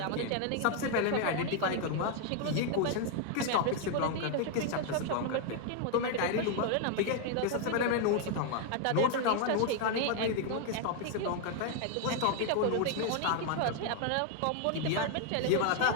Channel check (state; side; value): different; both; correlation 0.00